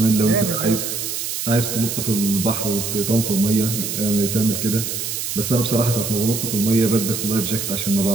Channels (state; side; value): noise; right; hiss, 4 dB below the sound